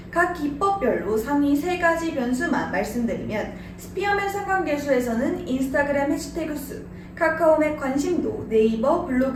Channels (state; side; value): identical; both; correlation 1.00